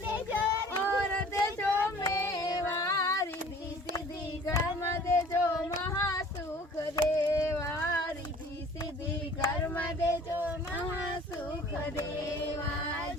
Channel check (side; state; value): both; normal; correlation 0.49